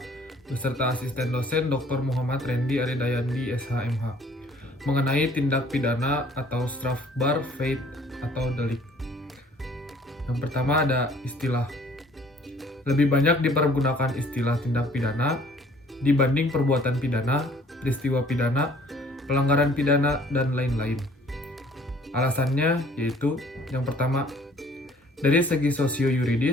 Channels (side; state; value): both; normal; correlation 0.56